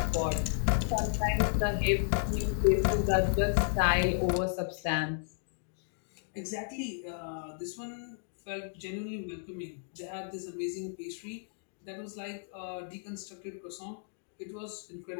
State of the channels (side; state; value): right; silent; digital silence